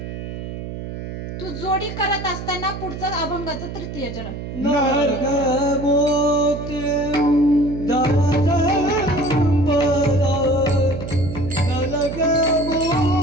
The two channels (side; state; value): right; noise; hum, 8 dB below the sound